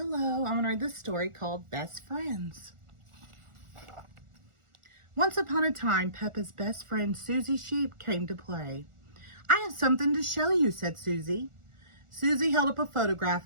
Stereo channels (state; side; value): late; left; 1.4 ms